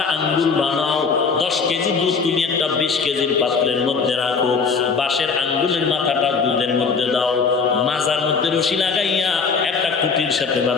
আঙ্গুল বানাও। 10 কেজি দুধ তুমি একটা 20 কেজির পাত্রের মধ্যে রাখো। বাঁশের আঙ্গুলের মাথাটা দুধের মধ্যে দাও, মাজার মধ্যে রশি লাগাইয়া একটা খুঁটির সাথে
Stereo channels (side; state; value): right; quieter; 5.2 dB